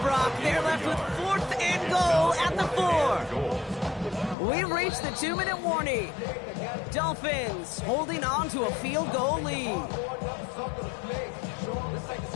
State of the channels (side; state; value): right; drops out; at 4.4 s